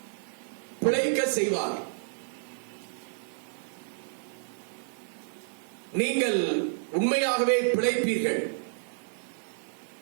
பிழைக்க செய்வார். நீங்கள் உண்மையாகவே பிழைப்பீர்கள்.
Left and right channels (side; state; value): left; silent; digital silence